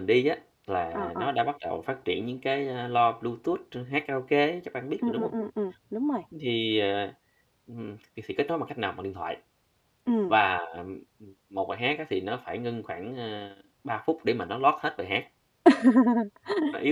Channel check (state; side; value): identical; both; correlation 1.00